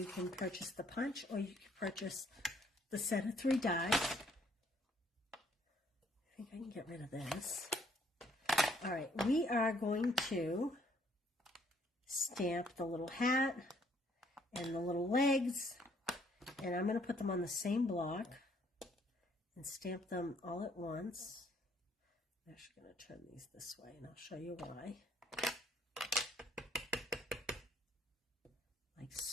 can purchase the punch or you can purchase the set of 3 dies. I think I can get rid of this. All right, we are going to stamp the little hat and the little legs, and I'm going to put them on the same block and stamp them all at once. I'm actually going to turn these this way, and I'll show you why. Like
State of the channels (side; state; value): both; normal; correlation 0.65